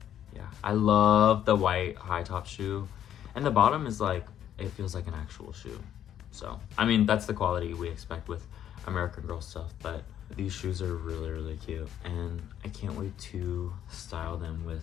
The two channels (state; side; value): quieter; right; 10.4 dB